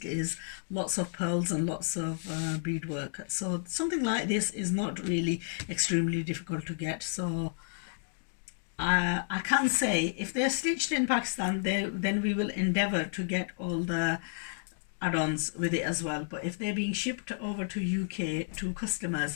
is lots of pearls and lots of beadwork, so something like this is not really extremely difficult to get. So I can say if they're stitched in Pakistan, then we will endeavor to get all the add-ons with it as well. But if they're being shipped over to UK to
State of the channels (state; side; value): silent; right; digital silence